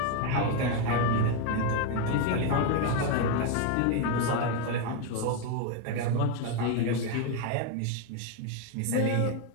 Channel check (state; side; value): different; both; correlation 0.01